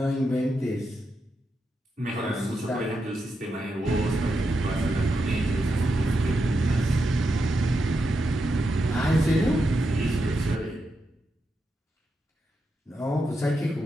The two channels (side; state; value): both; normal; correlation 0.85